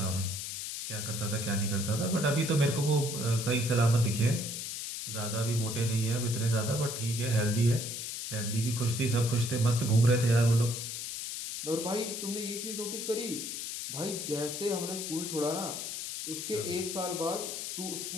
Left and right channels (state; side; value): noise; left; hiss, 5 dB below the sound